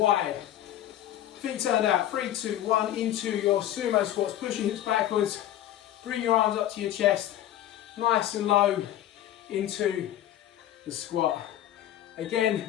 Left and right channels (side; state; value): right; quieter; 12.5 dB